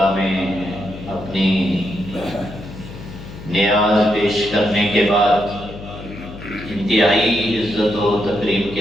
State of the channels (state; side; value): noise; left; hum, 13 dB below the sound